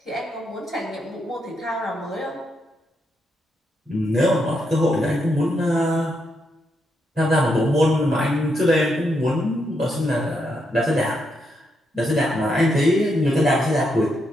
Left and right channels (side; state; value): both; normal; correlation 0.80